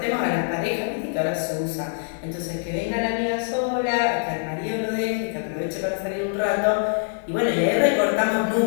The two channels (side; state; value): right; silent; digital silence